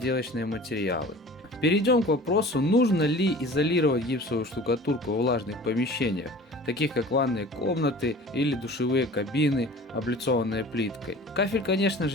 материалы. Перейдем к вопросу, нужно ли изолировать гипсовую штукатурку в влажных помещениях, таких как ванные комнаты или душевые кабины, облицованные плиткой. Кафель, конечно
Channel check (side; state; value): both; normal; correlation 0.42